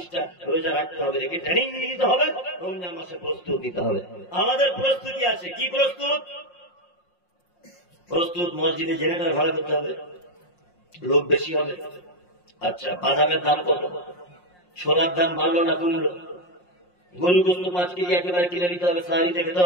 রোজা রাখতে হবে, রেখে ট্রেনিং নিতে হবে। রমজান মাসে প্রস্তুত নিতে হবে। আমাদের প্রস্তুতি আছে। কি প্রস্তুত? প্রস্তুত মসজিদে জেনারেটর ভাড়া করতে হবে, লোক বেশি হবে। আচ্ছা, বাদামের দাম কত? সোনার দাম বাড়লো না কমলো? গরু গোস্ত 5 কেজি একেবারে কিনে নিতে হবে, সাহারিতে খেতে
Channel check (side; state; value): right; late; 5.6 ms